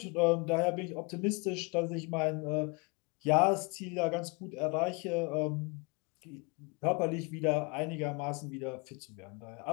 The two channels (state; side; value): quieter; right; 30.4 dB